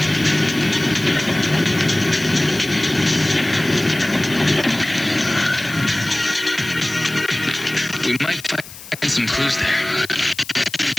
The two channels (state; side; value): noise; left; hiss, 16 dB below the sound